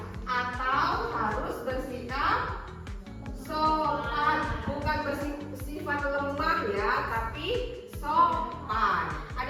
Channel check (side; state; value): both; identical; correlation 1.00